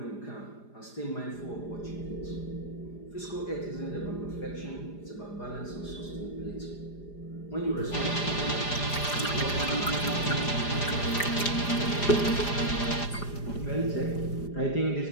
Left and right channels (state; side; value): late; right; 4.9 ms